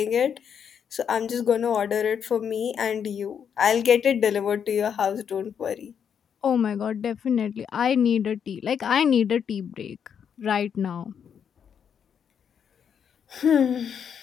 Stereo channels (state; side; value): quieter; right; 7.7 dB